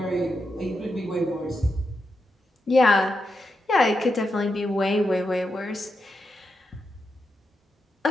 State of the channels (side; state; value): both; normal; correlation 0.85